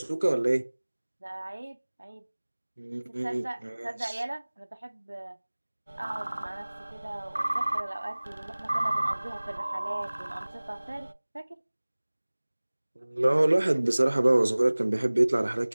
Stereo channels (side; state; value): both; inverted; correlation -1.00